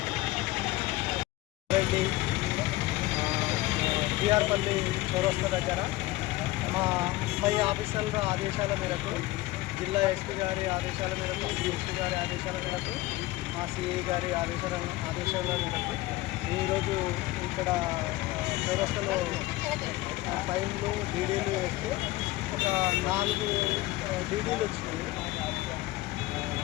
రెడ్డి బీఆర్పల్లి చౌరస్తా దగ్గర మా పై ఆఫీసర్ల ఆదేశాల మేరకు జిల్లా ఎస్పీ గారి ఆదేశాల మేరకు డిఎస్పీ గారి ఆదేశాల మేరకు మా సిఐ గారి ఆదేశాల మేరకు ఈరోజు ఇక్కడ చౌరస్తాలో ఫైన్లు డీడీలు వేస్తే ఒక 4 డీడీలు వచ్చినాయి.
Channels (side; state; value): right; quieter; 18.4 dB